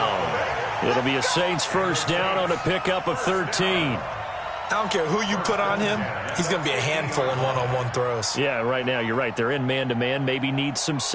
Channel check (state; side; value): identical; both; correlation 1.00